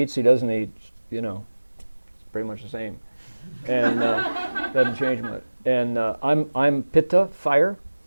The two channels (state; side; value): inverted; both; correlation -1.00